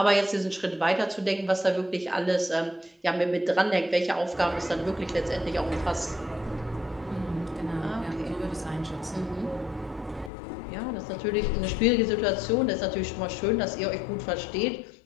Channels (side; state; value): right; drops out; at 10.3 s